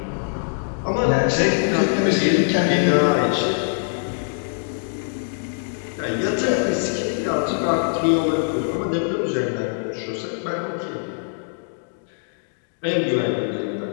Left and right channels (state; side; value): silent; right; digital silence